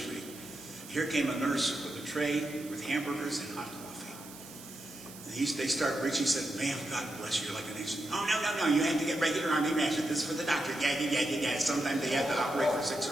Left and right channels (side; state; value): right; noise; hiss, 16 dB below the sound